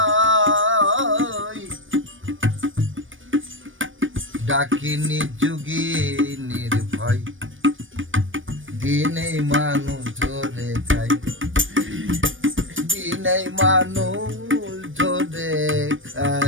ডাকিনি যুগী নির্ভয় দিনেই মানুষ ধরে খাই দিনেই মানুষ ধরে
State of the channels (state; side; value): late; left; 0.57 ms